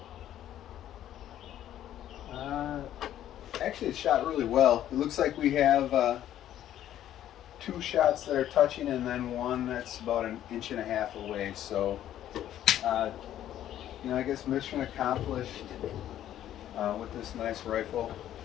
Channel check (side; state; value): right; quieter; 11.8 dB